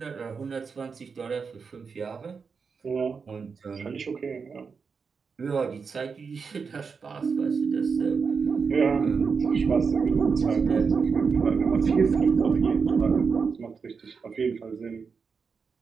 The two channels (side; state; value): left; quieter; 5.4 dB